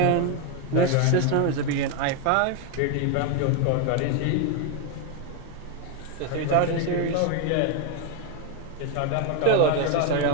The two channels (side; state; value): both; different; correlation 0.01